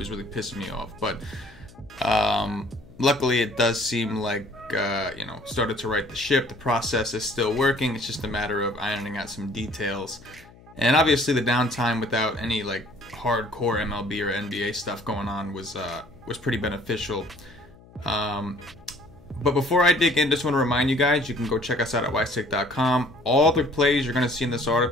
really pissing me off, but luckily it does seem like started to right the ship. The process is still working. It's just a matter of ironing out some details, and obviously the downtime without any like hardcore MLB or NBA stuff going on was pretty beneficial. But before I dig in, just want to remind you guys, you can go check us out at wisetake.com. All the plays you're going to see in this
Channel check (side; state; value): left; noise; hum, 24 dB below the sound